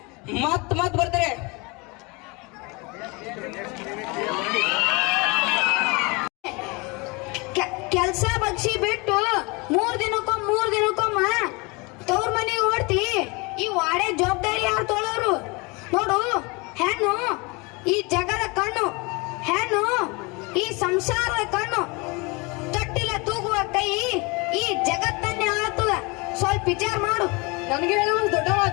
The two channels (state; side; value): quieter; right; 27.5 dB